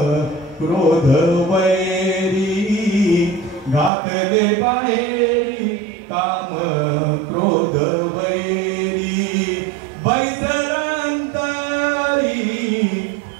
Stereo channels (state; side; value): drops out; left; at 3.9 s